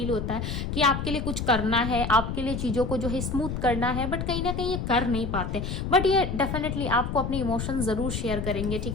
होता है कि आपके लिए कुछ करना है, आपके लिए चीजों को जो है स्मूथ करना है, बट कहीं ना कहीं ये कर नहीं पाते। बट ये डेफिनेटली आपको अपने इमोशन जरूर शेयर करेंगे,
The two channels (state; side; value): noise; left; rumble, 3 dB below the sound